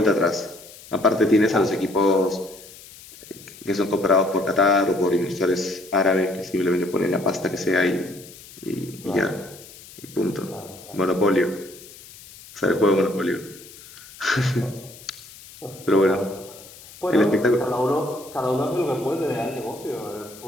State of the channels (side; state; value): left; noise; hiss, 19 dB below the sound